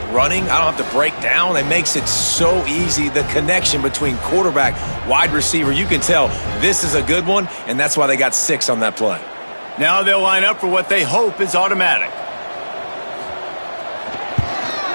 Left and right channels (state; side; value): inverted; both; correlation -1.00